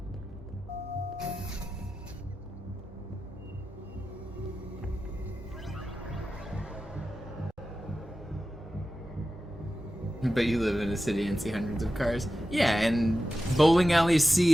But you live in a city and see hundreds of cars. Yeah, and bowling alleys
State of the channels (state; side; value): normal; both; correlation 0.93